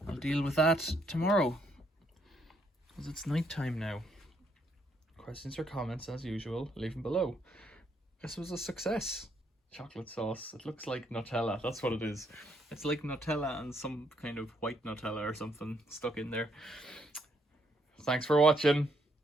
I'll deal with that tomorrow, because it's night time now. Questions or comments, as usual, leave them below. This was a success. Chocolate sauce. It looks like Nutella. That's what it is. It's like Nutella and some kind of white Nutella or something stuck in there. Thanks for watching.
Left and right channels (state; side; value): normal; both; correlation 0.73